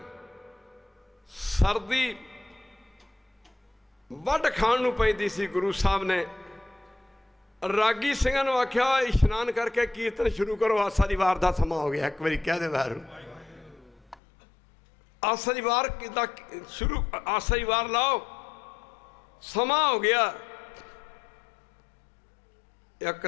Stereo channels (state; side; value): drops out; right; at 14.2 s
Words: सर्दी वढ खाण नूं पैंदी सी। गुरु साहब ने रागी सिंघां नूं आख्या इशनान करके कीर्तन शुरू करो, आसा दी वार दा समा हो गया। एक बारी कह दे वैरू। आसा दी वार दा शुरू, आसा दी वार लाओ, समा हो गया। एक